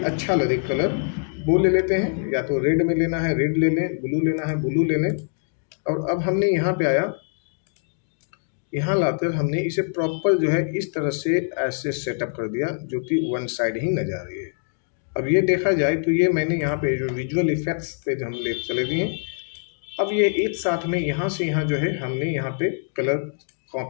अच्छा लगे कलर वो ले लेते हैं, या तो रेड में लेना है रेड ले लें, ब्लू लेना है ब्लू ले लें। और अब हमने यहाँ पे आया, यहाँ लाकर हमने इसे प्रॉपर जो है इस तरह से ऐसे सेटअप कर दिया जो कि वन साइड ही नजर आ रही है। अब ये देखा जाए तो ये मैंने यहाँ पे जो विजुअल इफेक्ट्स पे जो हम ले चले दिए, अब ये एक साथ में यहाँ से यहाँ जो है हमने यहाँ पे कलर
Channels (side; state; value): right; silent; 63 dB below the other